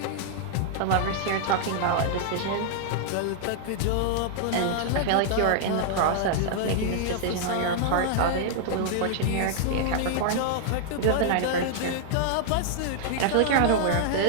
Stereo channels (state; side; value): different; both; correlation -0.01